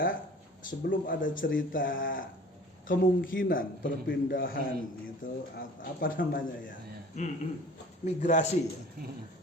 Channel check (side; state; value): both; normal; correlation 0.46